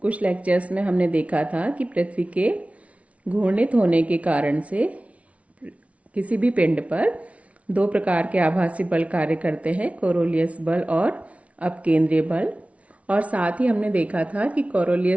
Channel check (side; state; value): left; late; 0.065 ms